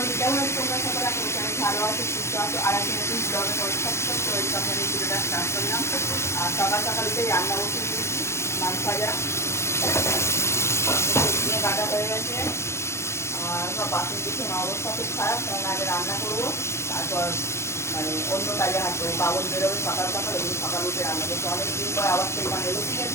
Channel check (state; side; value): late; right; 0.13 ms